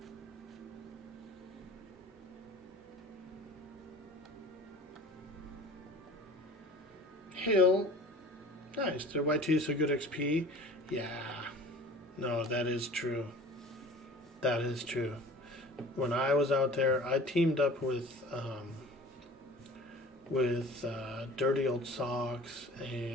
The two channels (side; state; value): both; normal; correlation 0.43